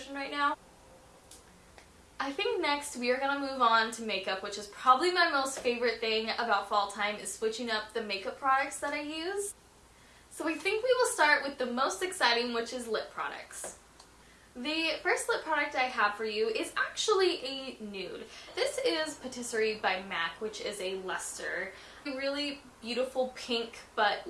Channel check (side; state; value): both; identical; correlation 1.00